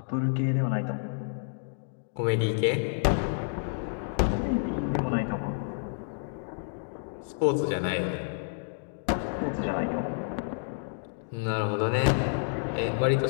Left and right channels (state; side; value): silent; right; digital silence